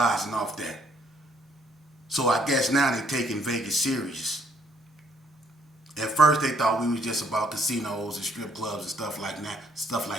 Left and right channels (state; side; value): normal; both; correlation 0.66